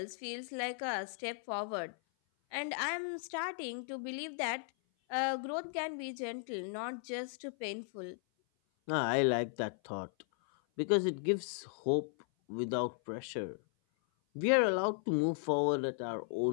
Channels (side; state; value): right; silent; 54 dB below the other